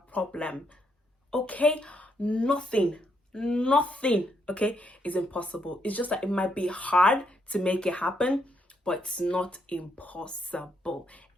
problem. Okay? Nothing, okay, is impossible. It's just that it might be hard to make it happen, but it's not impossible.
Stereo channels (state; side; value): normal; both; correlation 0.76